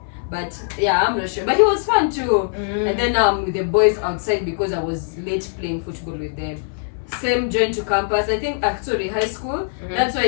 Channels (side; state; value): right; silent; 58 dB below the other